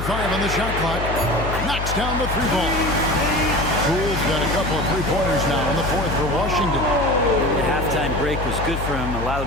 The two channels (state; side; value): noise; left; hum, 4 dB below the sound